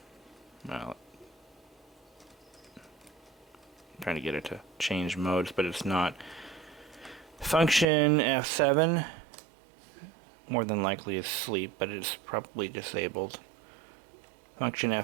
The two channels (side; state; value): left; drops out; at 7.9 s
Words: trying to get it to change modes, but it's not. Function F7 more than likely is sleep, but it's probably disabled. Function